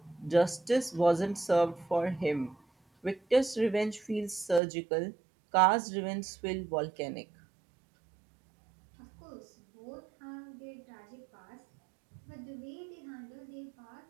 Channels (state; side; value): drops out; left; at 4.6 s